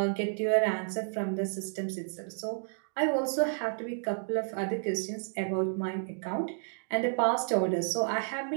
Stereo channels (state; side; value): silent; left; digital silence